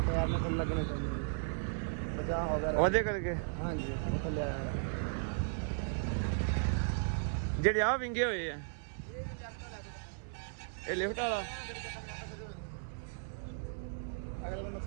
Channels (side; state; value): left; silent; 54 dB below the other